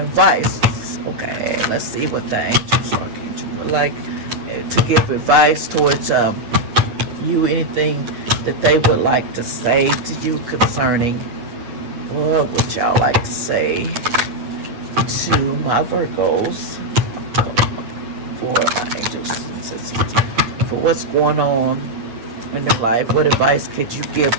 Okay, let's see what the angels or archangels would like to give advice towards you. Anything that they would like to say to you concerning what would y'all like to say to my Virgos for my angels, for what's going on in their life? What advice could you give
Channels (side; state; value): left; late; 8.6 ms